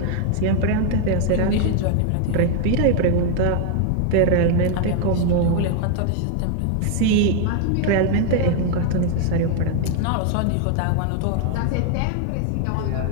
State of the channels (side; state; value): both; different; correlation 0.00